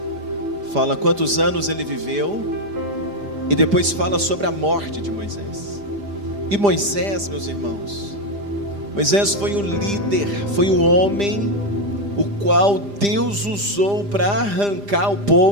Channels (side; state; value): left; late; 5.0 ms